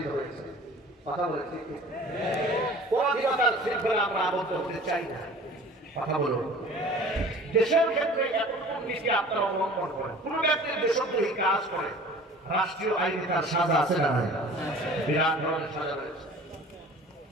হয়েছে, কথা বলে ঠিক। পরাধীনতার শৃঙ্খলা আমরা আবদ্ধ হতে চাই না, কথা বলুন। দেশের ক্ষেত্রে এতটুকু নীতি আপনারা অবলম্বন করেন, কোন ব্যক্তির দেশদ্রোহী কাজ করে রাষ্ট্রীয় আইনে তার সাজা আছে না? বিরাট ধরনের সাজা রয়েছে।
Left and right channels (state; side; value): normal; both; correlation 0.45